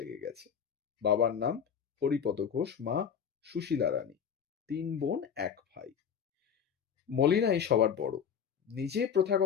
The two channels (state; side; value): quieter; right; 7.7 dB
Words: গেছে। বাবার নাম হরিপদ ঘোষ, মা সুশীলা রানী, 3 বোন 1 ভাই। মলিনাই সবার বড়। নিজে